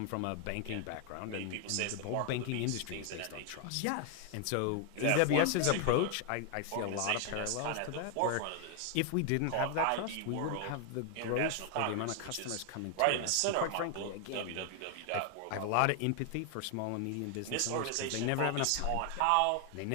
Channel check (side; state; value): both; different; correlation 0.00